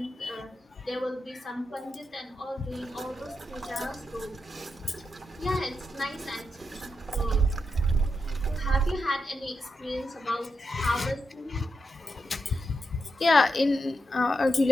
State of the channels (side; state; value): both; normal; correlation 0.87